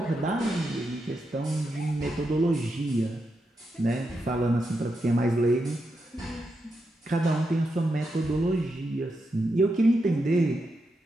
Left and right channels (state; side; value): normal; both; correlation 0.85